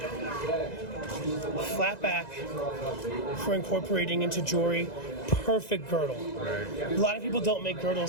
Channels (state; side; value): late; right; 2.0 ms